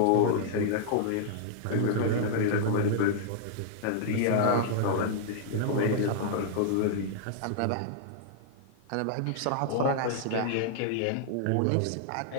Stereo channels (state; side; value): different; both; correlation -0.01